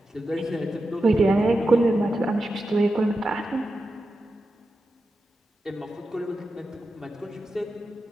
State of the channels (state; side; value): normal; both; correlation 0.90